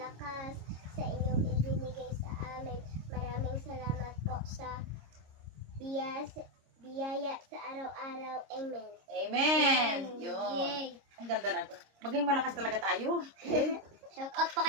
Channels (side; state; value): left; late; 26 ms